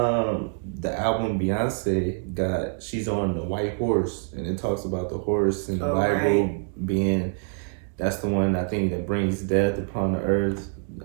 the album Beyonce got, she's on the white horse, and it talks about the horse and the Bible being, that's the one I think that brings death upon the earth.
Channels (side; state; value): left; silent; digital silence